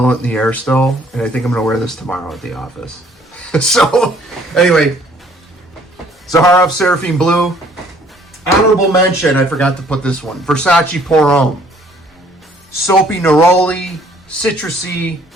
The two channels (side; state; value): both; normal; correlation 0.60